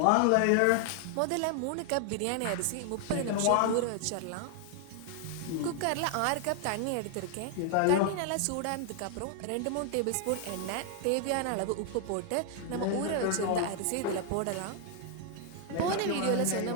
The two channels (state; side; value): different; both; correlation 0.00